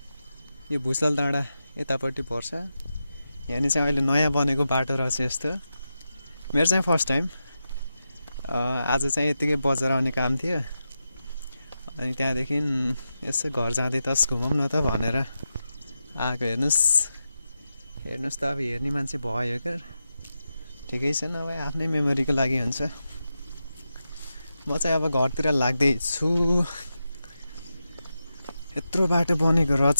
यो भुसाल डाँडा यतापट्टि पर्छ। यहाँनिर चाहिँ अहिले नयाँ बनेको बाटो रहेछ यस्तो। मेरो चाहिँ फर्स्ट टाइम। आज चाहिँ यतिकै बजार आउने काम थियो, अनि त्यहाँदेखि यसो घर जाँदै तस घुमौँ न त भनेर आएको। हेर्नुहोस् त, अब हेर्ने मान्छे भयो क्या, ठिकै छ। नभए आफ्नै मेमोरीको लागि हुन्छ। म चाहिँ अब घरतिर लाग्दैछु। यत्रो बाटो बनेको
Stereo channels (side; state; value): both; inverted; correlation -0.89